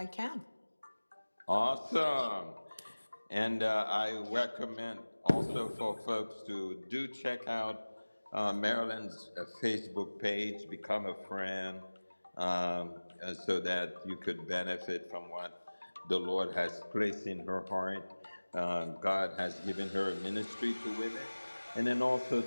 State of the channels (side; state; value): both; inverted; correlation -1.00